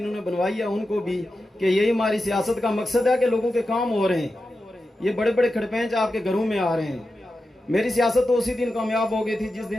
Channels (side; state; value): both; normal; correlation 0.91